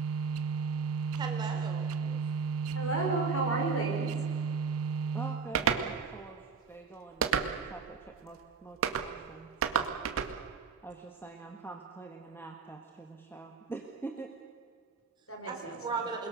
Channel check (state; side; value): quieter; left; 5.1 dB